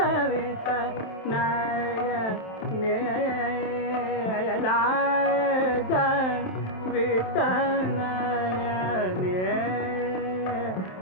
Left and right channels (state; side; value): late; right; 27 ms